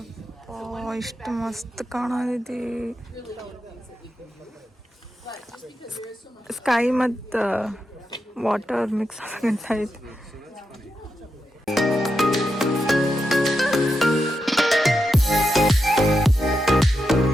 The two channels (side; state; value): both; normal; correlation 0.86